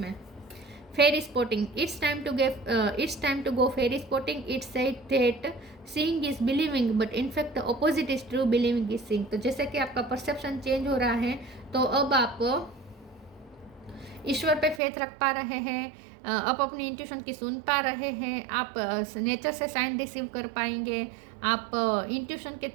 फेरी spotting. It's time to go fairy spotting. It's said that seeing is believing, but in fact the opposite is true. Believing is seeing. तो जैसे कि आपका परसेप्शन चेंज हो रहा है तो अब आप ईश्वर पे फेथ रख पा रहे हैं, आप अपनी इंट्यूशन की सुन पा रहे हैं, आप नेचर से साइन रिसीव कर पाएंगे, आप इंट्यूशन के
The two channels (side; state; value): left; drops out; at 14.8 s